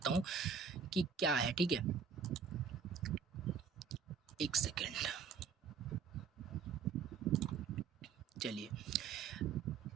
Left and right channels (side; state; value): left; quieter; 6.3 dB